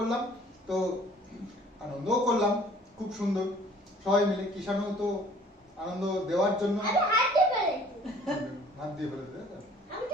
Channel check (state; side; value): normal; both; correlation 0.54